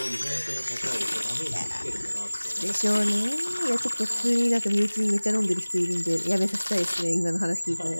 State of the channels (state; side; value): inverted; both; correlation -1.00